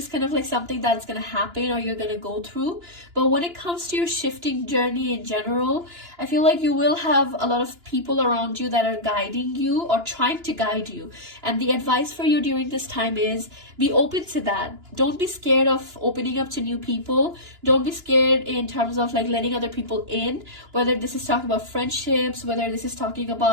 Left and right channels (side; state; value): left; late; 2.9 ms